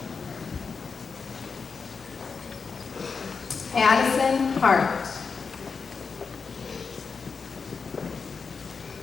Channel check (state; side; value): quieter; right; 5.3 dB